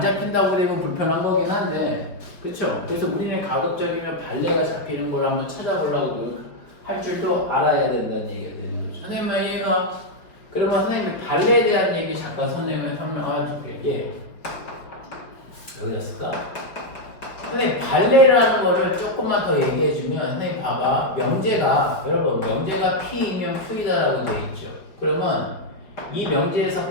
되면 불편한 거긴 한데 그쵸? 그래서 우리는 가급적이면 발레가 잡히는 걸 한번 찾아보려고 할 줄도 알아야 된다는 얘기가 되는 거죠. 선생님 말 이해가? 그러면 선생님이 발레에 대한 얘기 잠깐 선생님이 설명할게요. 여기다 쓸까? 선생님 발레라는 거를 조금만 더 얘기해주면 선생님 봐봐. 명제가 여러분 명제가 P이면 Q이다라고 되어 있죠. 그러면 이 명제에서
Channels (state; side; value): late; right; 5.1 ms